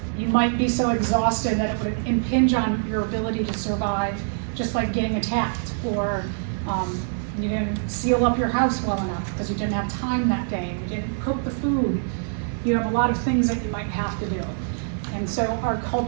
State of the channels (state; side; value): silent; left; digital silence